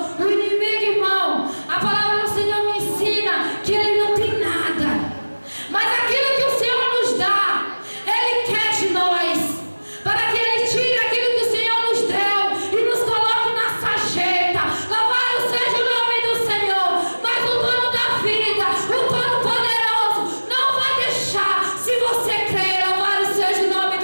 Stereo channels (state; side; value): inverted; both; correlation -1.00